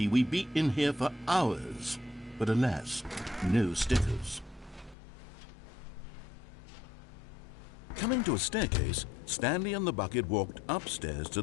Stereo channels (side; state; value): right; drops out; at 5.0 s